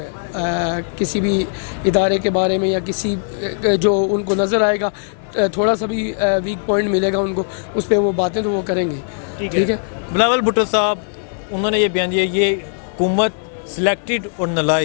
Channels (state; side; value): silent; right; digital silence